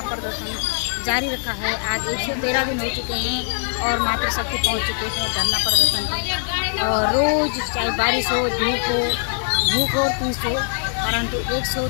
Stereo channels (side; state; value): right; silent; digital silence